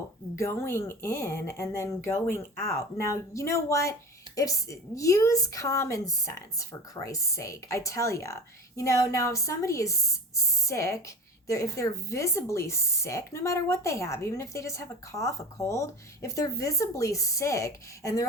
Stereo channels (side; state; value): both; normal; correlation 0.34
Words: going in and then going out. Now, you know what? Use common sense, for Christ's sake. I tell you, now if somebody is sick, if they're visibly sick, no matter what they have, even if they just have a cough, a cold, if they're visibly sick and they're